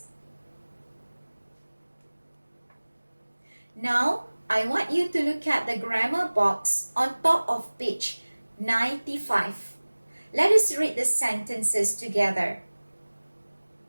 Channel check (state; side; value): inverted; both; correlation -1.00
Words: Now, I want you to look at the grammar box on top of page 95. Let us read the sentences together.